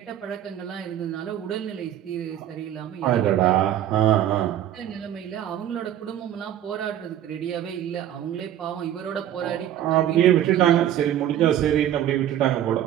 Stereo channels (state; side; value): quieter; left; 11.3 dB